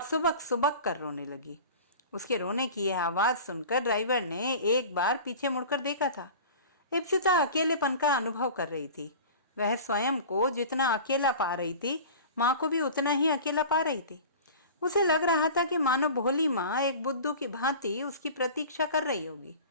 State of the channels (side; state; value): both; inverted; correlation -0.38